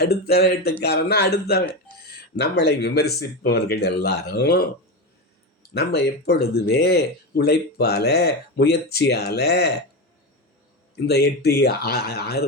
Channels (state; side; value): normal; both; correlation 0.18